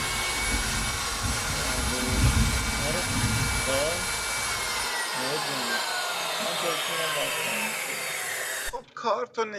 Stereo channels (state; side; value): identical; both; correlation 1.00